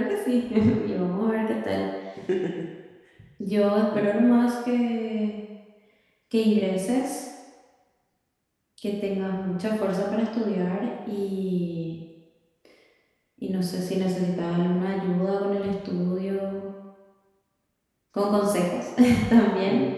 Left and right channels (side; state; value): both; identical; correlation 1.00